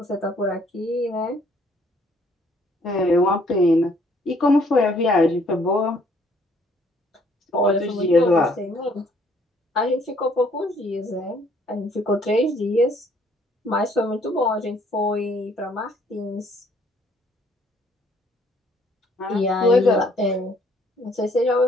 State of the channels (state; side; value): normal; both; correlation 0.63